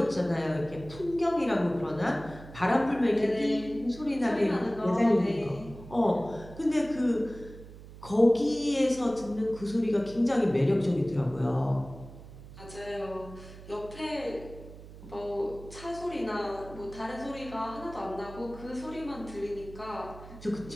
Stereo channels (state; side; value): noise; right; hum, 16 dB below the sound